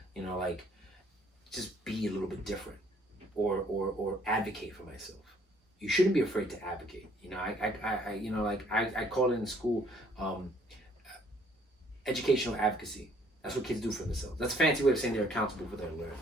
you know, like, just be a little bit different, or advocate for myself. You shouldn't be afraid to advocate. You know, I you know, like I call it in school educational advocacy. That's what kids do for themselves. That's a fancy way of saying they're accountable for their learning.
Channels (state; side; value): normal; both; correlation 0.62